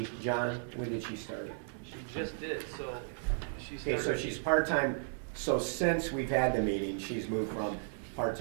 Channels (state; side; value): silent; left; digital silence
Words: John, when did she start? She just did, so she Okay, started. so she's part-time, so since we've had the meeting, she's moved from